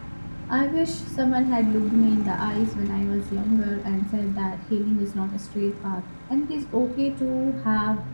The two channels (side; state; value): both; inverted; correlation -1.00